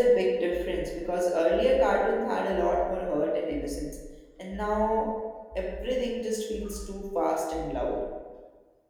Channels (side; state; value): both; identical; correlation 1.00